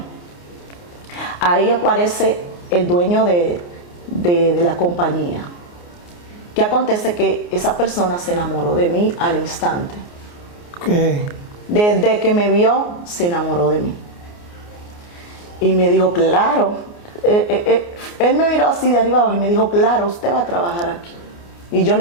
Ahí aparece el dueño de la compañía. ¿Qué acontece? Que esa persona se enamoró de mí al instante. Okay. Desde que me vio, se enamoró de mí. Y me dijo, claro, él me miró así de arriba abajo y me dijo, claro, usted va a trabajar aquí. Y yo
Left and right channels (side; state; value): right; late; 29 ms